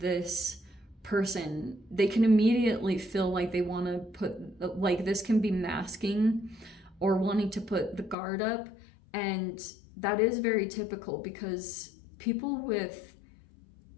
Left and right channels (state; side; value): drops out; right; at 8.2 s